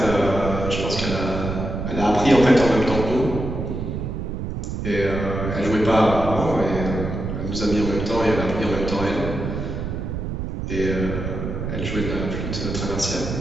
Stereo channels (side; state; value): right; noise; rumble, 4 dB below the sound